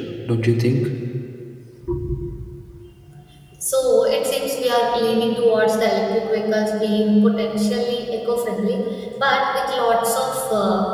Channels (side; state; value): both; identical; correlation 1.00